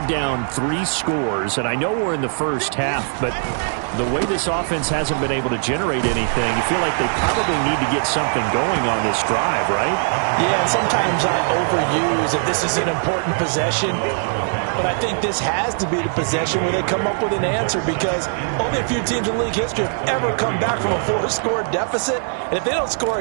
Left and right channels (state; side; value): silent; left; digital silence